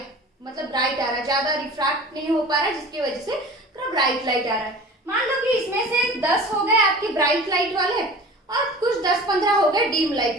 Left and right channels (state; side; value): normal; both; correlation 0.40